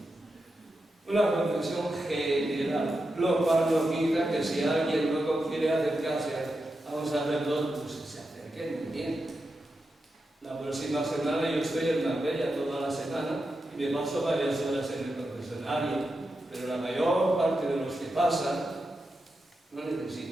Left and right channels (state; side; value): normal; both; correlation 0.88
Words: confesión general, lo cual no quita que si alguien luego quiere acercarse a un sacerdote, pues se acerque muy bien. La próxima semana yo estoy en Marbella toda la semana y me paso varias horas en el confesionario, pero la mayor parte de los que pasan no